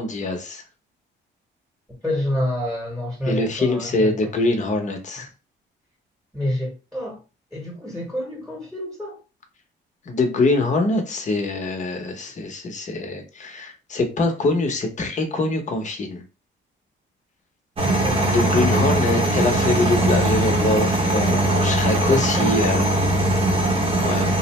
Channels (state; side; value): normal; both; correlation 0.52